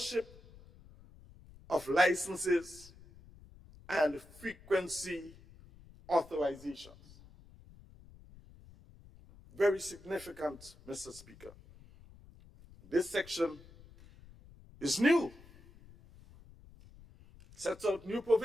of licenses and frequency authorizations. Very significant, Mr. Speaker. This section is new. Sets out new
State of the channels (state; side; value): noise; left; rumble, 22 dB below the sound